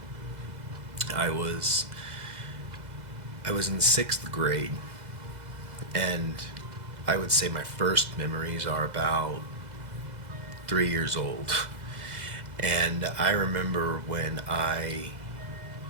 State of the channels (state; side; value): late; left; 2.0 ms